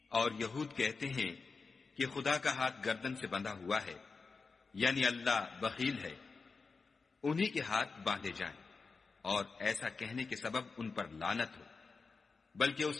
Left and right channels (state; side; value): quieter; right; 4.5 dB